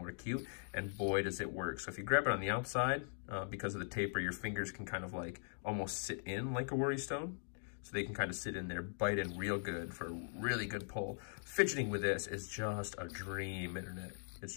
acute, and boy, does it work. So if you grab it on the outside, because of the taper, your fingers can kind of like almost sit in like a worry stone. So they can kind of sit in there, bite in real good for a really good pull. Fidgeting with this is just a dream, internet. It's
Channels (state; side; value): silent; right; digital silence